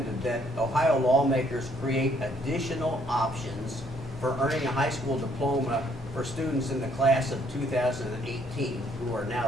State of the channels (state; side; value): normal; both; correlation 0.67